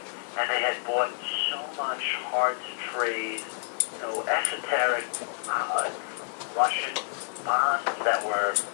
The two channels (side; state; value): right; silent; digital silence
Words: and they had bought so much hard-to-trade, esoteric Russian bonds that were,